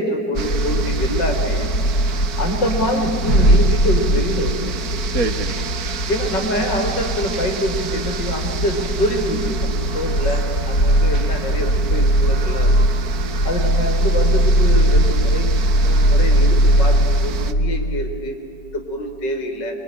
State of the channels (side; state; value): right; late; 4.5 ms